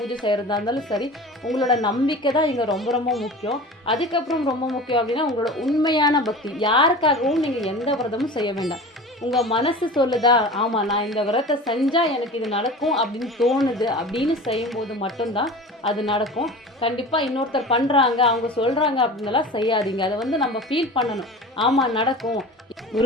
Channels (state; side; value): normal; both; correlation 0.36